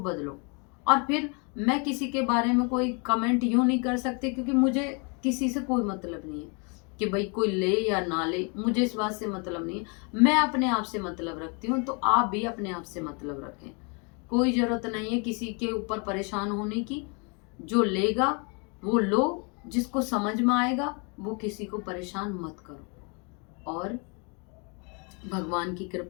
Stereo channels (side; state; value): right; quieter; 34.4 dB